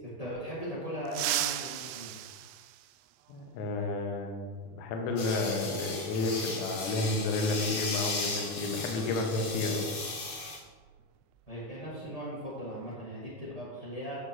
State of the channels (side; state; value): right; late; 1.7 ms